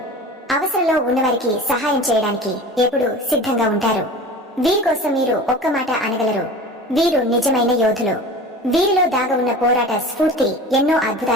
అవసరంలో ఉన్నవారికి సహాయం చేయడానికి ఎప్పుడూ సిద్ధంగా ఉంటారు. వీరి కోసం మీరు ఒక్క మాట అనగలరు. వీరు నిజమైన యోధులు. వీరిలో దాగ ఉన్న పోరాట స్ఫూర్తి ఎన్నో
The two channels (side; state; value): both; normal; correlation 0.37